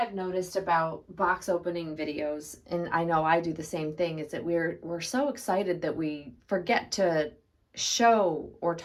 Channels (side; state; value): both; identical; correlation 1.00